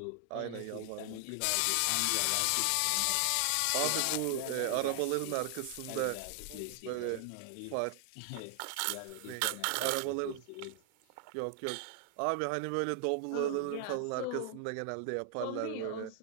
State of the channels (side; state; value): both; different; correlation 0.00